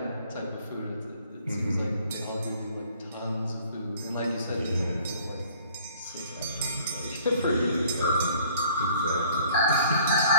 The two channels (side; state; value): both; inverted; correlation -0.56